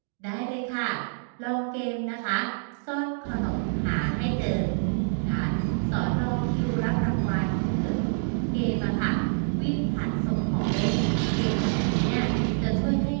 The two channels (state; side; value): silent; left; digital silence